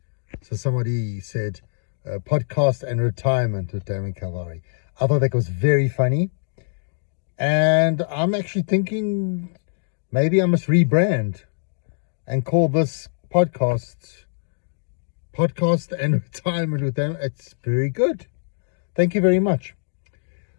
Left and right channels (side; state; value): right; silent; digital silence